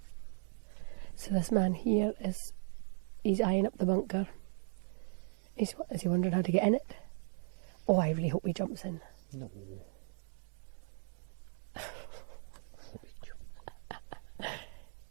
So this man here he's eyeing up the bunker. Is he wondering how to get in it? Oh, I really hope he jumps in. No. Hope he jumps.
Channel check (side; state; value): left; silent; 53 dB below the other